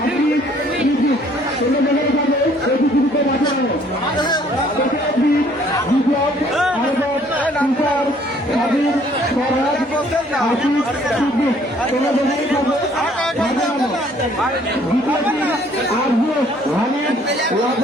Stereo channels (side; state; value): both; normal; correlation 0.60